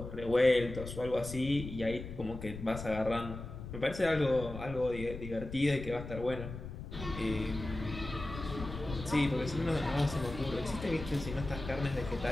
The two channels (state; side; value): noise; left; rumble, 10 dB below the sound